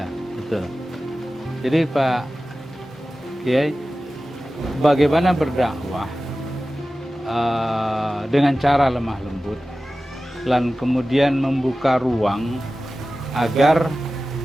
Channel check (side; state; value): both; normal; correlation 0.95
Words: betul. Jadi Pak Kiai, bagaimana berdakwah dengan cara lemah lembut, dan kemudian membuka ruang agar